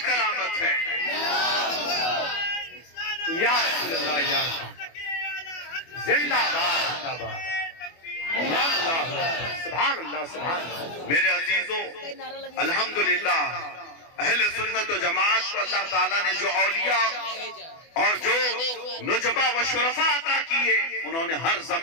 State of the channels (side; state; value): right; late; 24 ms